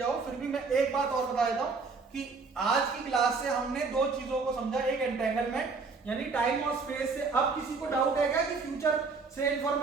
फिर भी मैं एक बात और बता देता हूं कि आज की क्लास से हमने दो चीजों को समझा, एक एंटेंगलमेंट यानी टाइम और स्पेस से। अब किसी को डाउट है क्या कि फ्यूचर से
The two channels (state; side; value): quieter; left; 4.5 dB